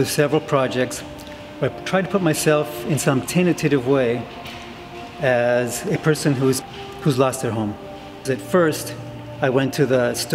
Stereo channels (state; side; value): identical; both; correlation 1.00